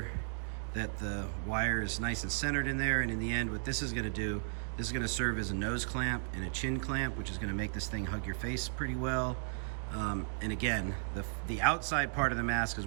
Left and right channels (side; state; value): left; silent; digital silence